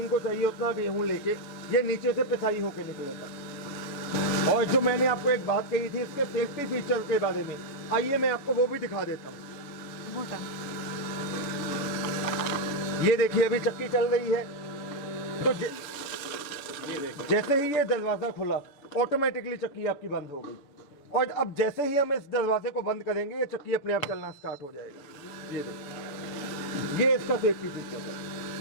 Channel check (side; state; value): right; late; 7.0 ms